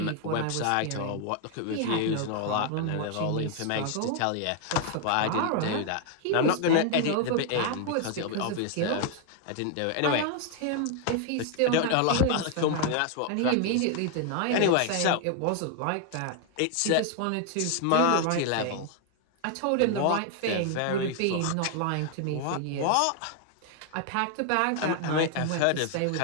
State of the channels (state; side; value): different; both; correlation 0.00